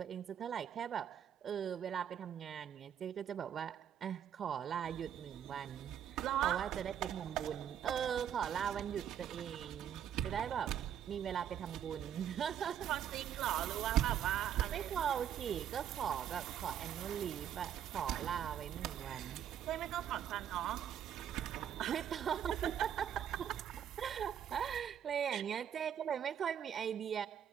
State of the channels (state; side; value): quieter; left; 9.4 dB